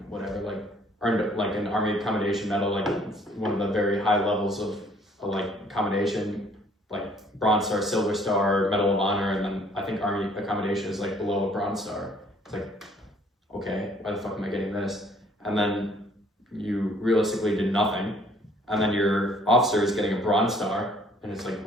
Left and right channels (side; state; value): both; normal; correlation 0.61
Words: whatever, like, earned like an Army Accommodation Medal, like one of the very high levels of like accommodation, like Bronze Star, Silver Star, Medal of Honor, and then I think Army Accommodation is like below a Bronze Star. It's like, okay, why the fuck am I getting this? And then you realistically did nothing, and then your officer is getting a Bronze Star, and it's like,